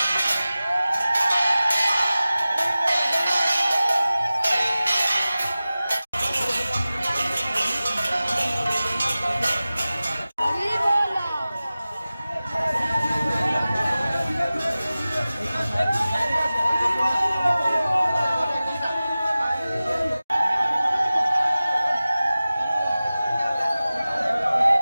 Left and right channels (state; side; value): inverted; both; correlation -0.96